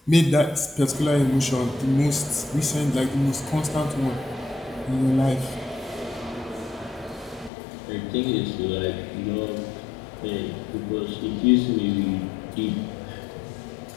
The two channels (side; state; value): right; drops out; at 7.5 s